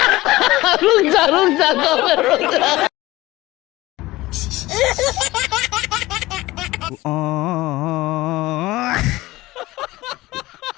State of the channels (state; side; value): quieter; right; 18.5 dB